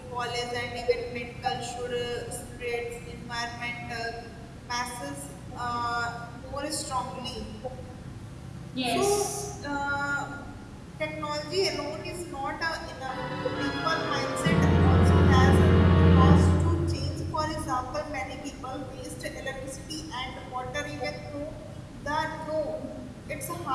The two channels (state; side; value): identical; both; correlation 1.00